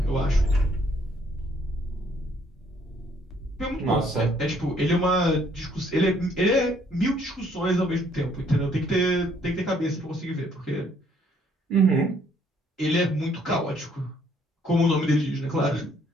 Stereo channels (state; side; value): normal; both; correlation 0.65